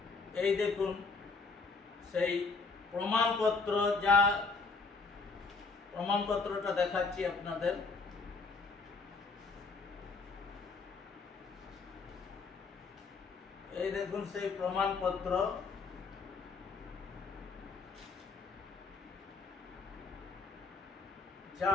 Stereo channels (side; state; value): right; quieter; 4.2 dB